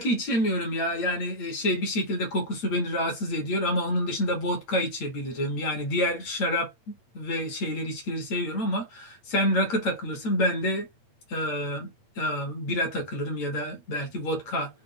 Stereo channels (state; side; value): late; right; 8.8 ms